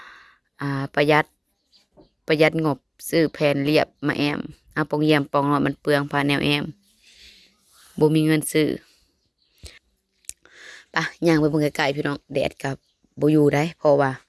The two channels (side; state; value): both; identical; correlation 1.00